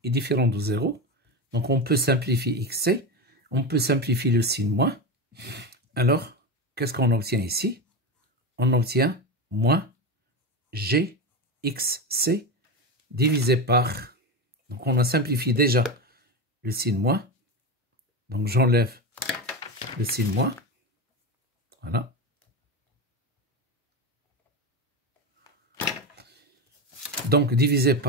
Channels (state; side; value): normal; both; correlation 0.19